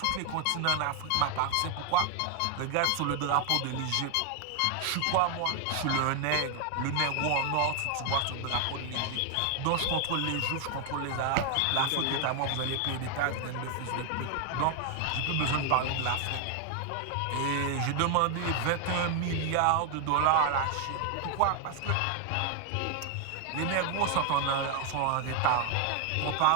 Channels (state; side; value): different; both; correlation 0.00